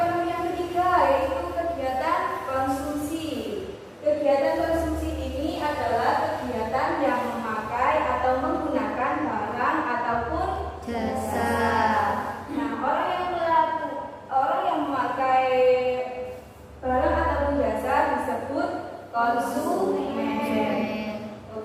yang ketiga yaitu kegiatan konsumsi. Kegiatan konsumsi ini adalah kegiatan yang memakai atau menggunakan barang ataupun jasa, Nah, orang yang memakai barang ataupun jasa disebut konsumen.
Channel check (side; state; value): both; identical; correlation 1.00